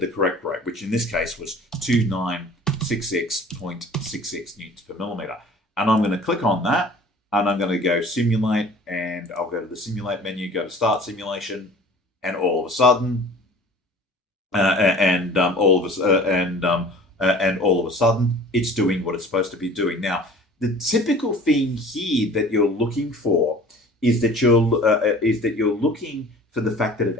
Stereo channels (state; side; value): normal; both; correlation 0.46